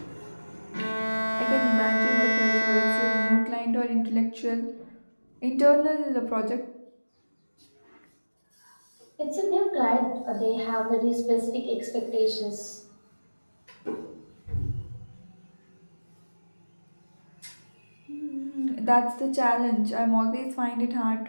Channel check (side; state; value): both; inverted; correlation -1.00